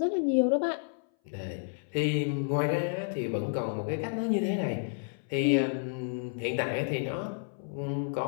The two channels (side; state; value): right; silent; 57 dB below the other